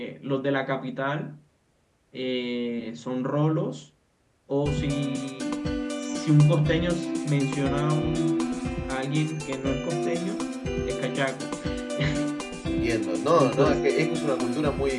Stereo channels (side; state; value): both; identical; correlation 1.00